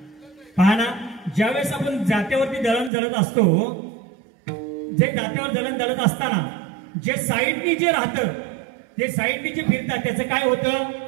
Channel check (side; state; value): left; drops out; at 2.9 s